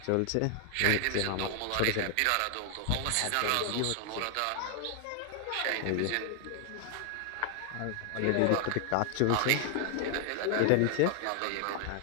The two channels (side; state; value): both; different; correlation 0.00